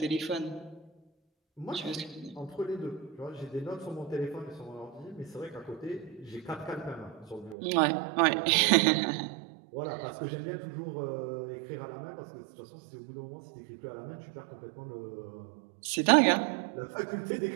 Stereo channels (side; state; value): left; drops out; at 7.6 s